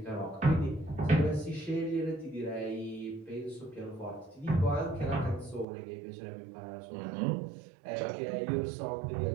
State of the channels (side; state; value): left; drops out; at 5.7 s